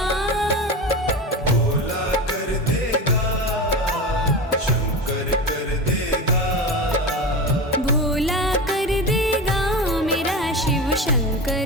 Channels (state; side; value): normal; both; correlation 0.25